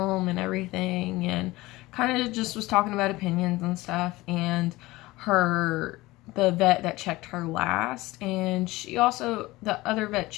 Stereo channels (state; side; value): quieter; right; 19.7 dB